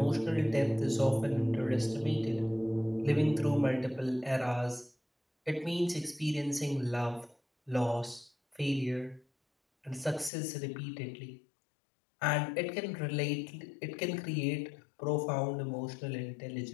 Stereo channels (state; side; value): drops out; right; at 10.3 s